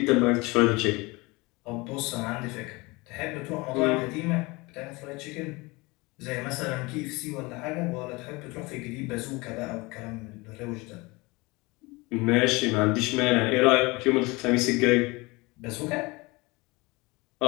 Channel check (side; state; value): right; quieter; 24.3 dB